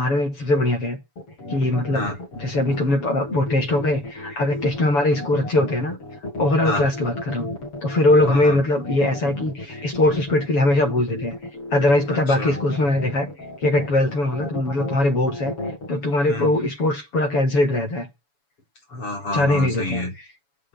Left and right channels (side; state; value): right; late; 7.1 ms